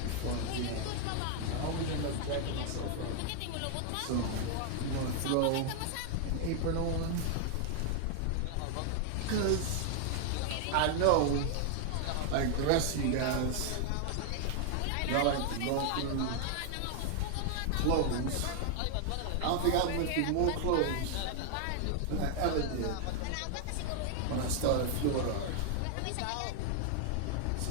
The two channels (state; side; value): different; both; correlation 0.00